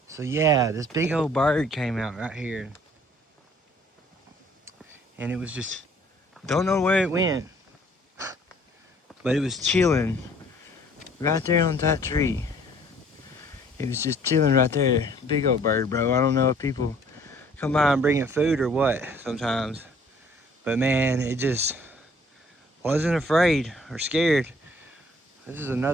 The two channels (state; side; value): normal; both; correlation 0.57